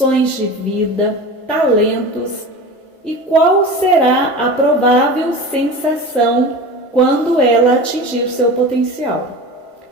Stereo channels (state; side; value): normal; both; correlation 0.32